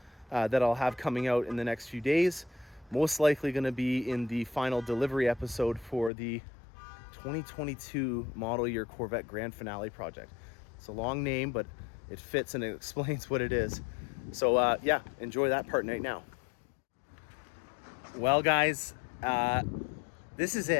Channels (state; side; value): drops out; right; at 6.1 s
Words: that I'll have coming out in the next few days. Most likely going to be in the final delivery episode for the 2022 model year Corvette Grand Finale project. It's a long name, but it fits and it explains what it is. So yeah, enjoy that part right now. Well, guys, this is